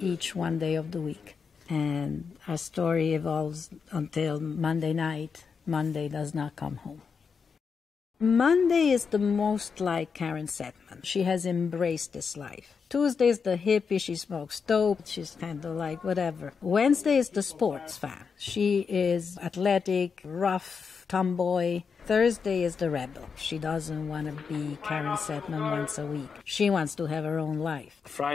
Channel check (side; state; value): right; quieter; 5.7 dB